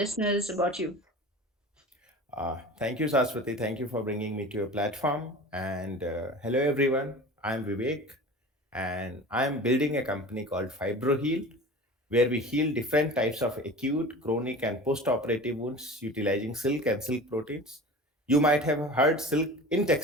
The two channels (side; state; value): both; normal; correlation 0.37